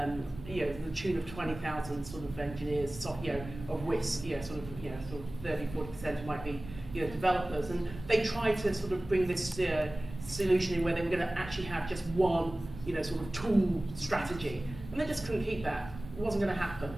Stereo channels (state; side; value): noise; right; rumble, 14 dB below the sound